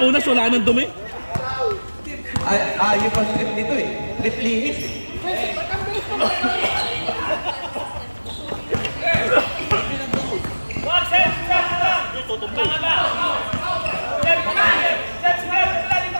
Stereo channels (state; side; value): inverted; both; correlation -1.00